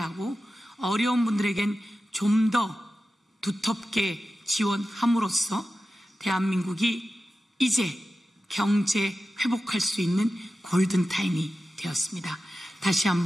어려운 분들에겐 좀 더 두텁게 지원함으로써 대한민국이 이제 경제 회복할 수 있는 골든타임이 되었습니다. 다시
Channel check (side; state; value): both; normal; correlation 0.93